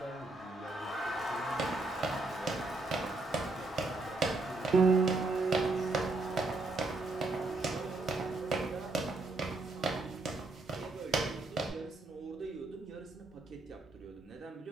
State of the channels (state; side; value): quieter; left; 3.2 dB